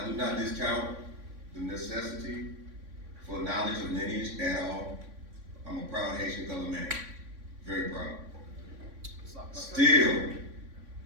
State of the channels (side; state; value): left; late; 3.6 ms